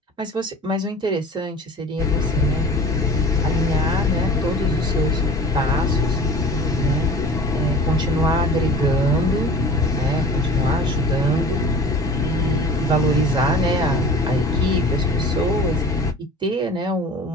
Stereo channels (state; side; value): normal; both; correlation 0.41